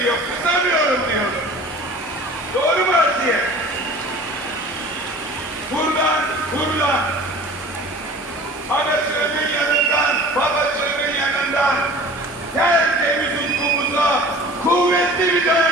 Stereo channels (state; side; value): normal; both; correlation 0.43